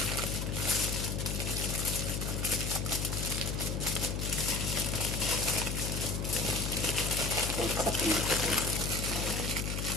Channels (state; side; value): noise; left; hum, 2 dB below the sound